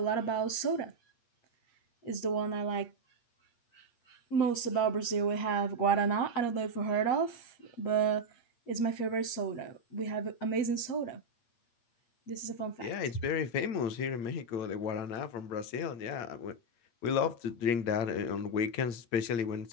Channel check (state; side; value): late; right; 8.5 ms